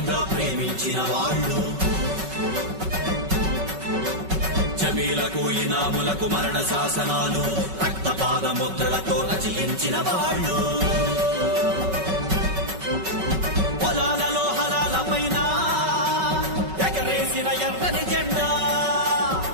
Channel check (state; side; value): late; left; 5.3 ms